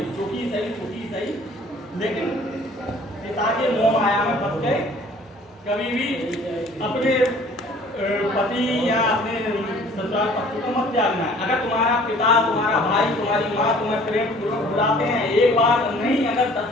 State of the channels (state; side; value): normal; both; correlation 0.52